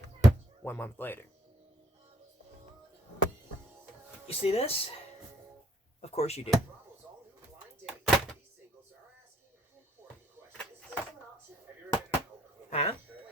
1 month later. You see this? Of course you do. Huh?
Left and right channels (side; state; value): both; normal; correlation 0.63